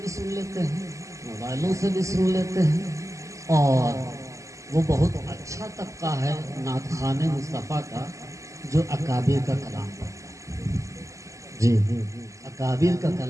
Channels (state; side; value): late; left; 0.15 ms